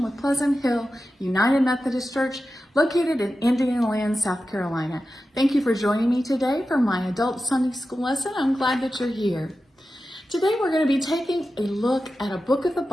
with Pleasant Hill United Methodist Church, located in Indianoland, South Carolina. Thank you for joining me today for my adult Sunday school lesson. I'm glad that you're here. Today we're going to be taking a look at a book of the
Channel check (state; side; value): normal; both; correlation 0.92